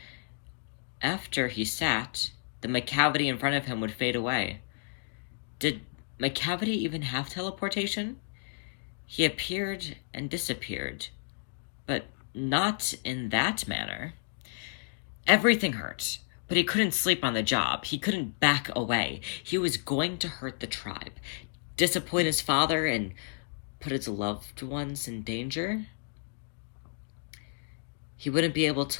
after he sat, the McCavity in front of him would fade away. Did McCavity even have teleportation? He appeared and disappeared, but not in that manner. Everything hurt, but he couldn't sleep on the job. He couldn't back away. He was going to hurt the tribe, disappoint his father, and put his loved ones in danger. He wouldn't be able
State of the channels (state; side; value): silent; right; digital silence